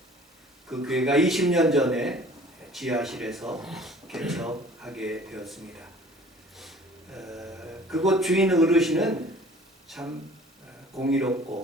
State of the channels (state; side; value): normal; both; correlation 0.50